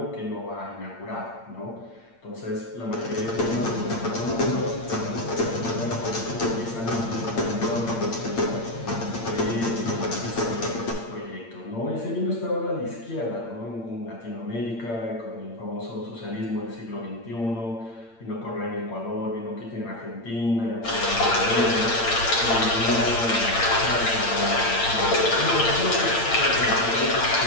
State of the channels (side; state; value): right; late; 8.7 ms